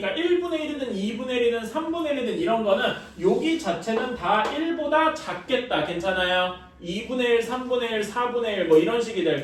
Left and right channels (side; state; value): both; identical; correlation 1.00